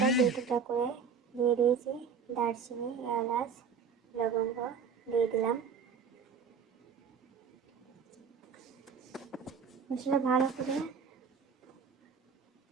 2 টুকরা করে দিয়ে দিয়েছি, দারচিনি, এলাচ, লবঙ্গ দিয়ে দিলাম। মশলা ভালো করে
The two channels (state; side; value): quieter; left; 6.0 dB